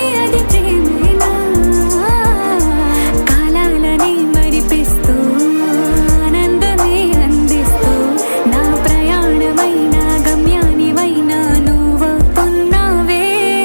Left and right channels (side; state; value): both; inverted; correlation -1.00